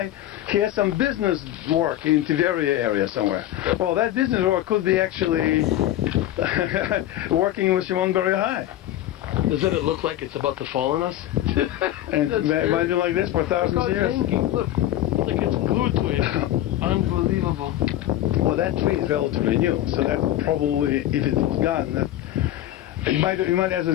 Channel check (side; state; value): right; quieter; 13.3 dB